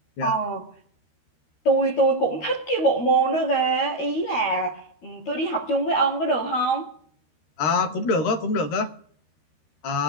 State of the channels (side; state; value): right; late; 13 ms